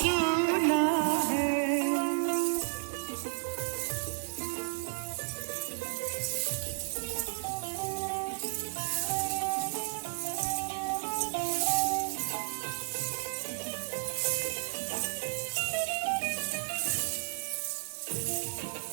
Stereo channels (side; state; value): left; silent; digital silence